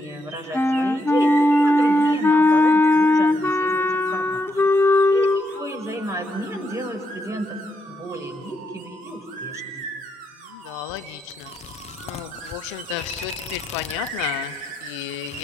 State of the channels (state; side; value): normal; both; correlation 0.79